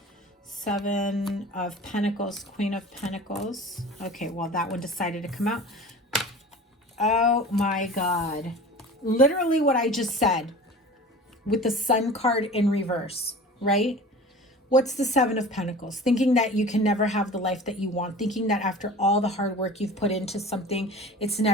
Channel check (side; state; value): both; normal; correlation 0.39